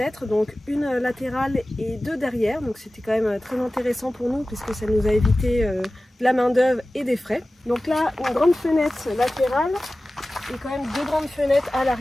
donc une latérale et 2 derrière. Donc c'était quand même très intéressant pour nous puisque ça nous a évité de la main d'œuvre et des frais. Donc là, une grande fenêtre latérale et quand même 2 grandes fenêtres à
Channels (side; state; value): both; normal; correlation 0.96